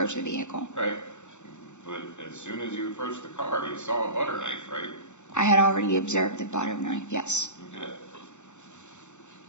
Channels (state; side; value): late; right; 0.83 ms